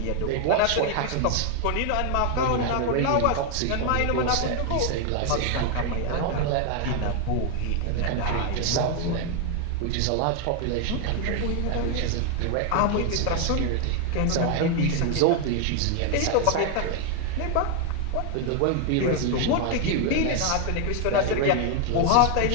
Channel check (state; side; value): different; both; correlation 0.00